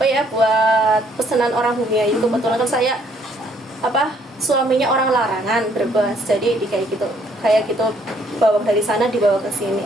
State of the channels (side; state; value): both; normal; correlation 0.66